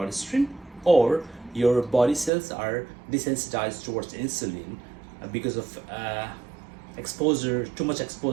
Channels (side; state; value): left; drops out; at 2.3 s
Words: or your body cells are desensitized towards insulin because of too much